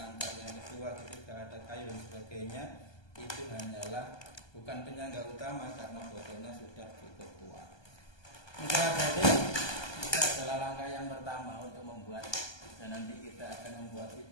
yang kedua ketika ada kayu dan sebagainya, itu hanyalah bukan penyangga utama karena botolnya sudah cukup kuat. Jadi itu adalah langkah yang pertama untuk membuat dana nanti kita akan membuat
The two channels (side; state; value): right; late; 1.2 ms